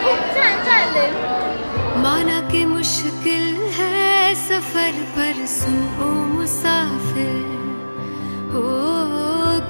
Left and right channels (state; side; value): inverted; both; correlation -1.00